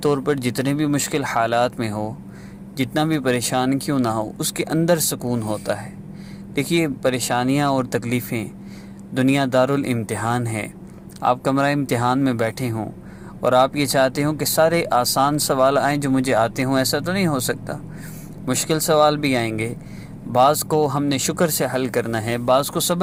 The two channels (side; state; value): both; identical; correlation 1.00